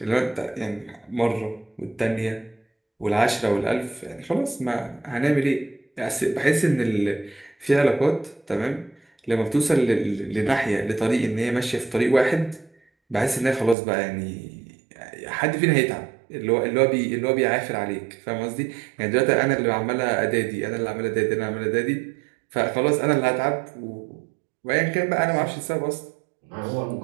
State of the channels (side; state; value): left; drops out; at 13.8 s